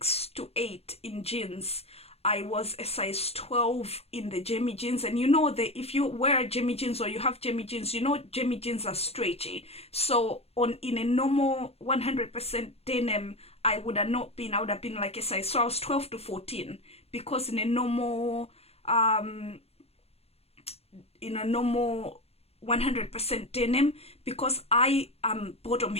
to 8 in jeans, I was a size 12 in the Jimmy jeans. And you know that if you wear Jimmy jeans or you have Jimmy jeans, you know Jimmy jeans are stretchy. So in a normal 100% denim, I would have been like a size, so I was 12 to 14, because in a normal 100% denim, because I am bottom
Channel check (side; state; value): right; late; 0.29 ms